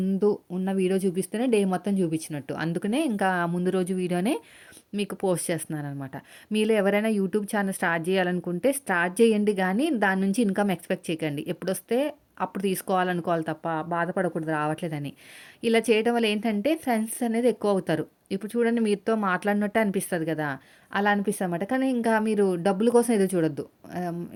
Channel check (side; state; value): both; identical; correlation 1.00